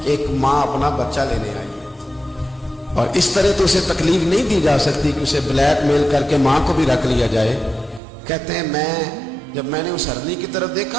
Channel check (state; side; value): drops out; left; at 8.0 s